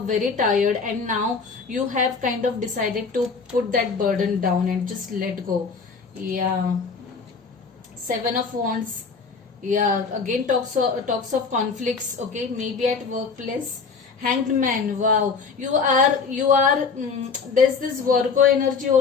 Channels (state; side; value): quieter; right; 5.0 dB